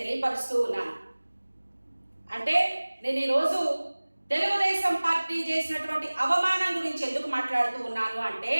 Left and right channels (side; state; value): both; inverted; correlation -1.00